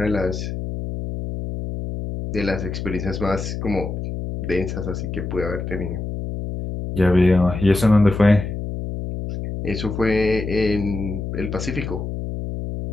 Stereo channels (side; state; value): left; noise; hum, 5 dB below the sound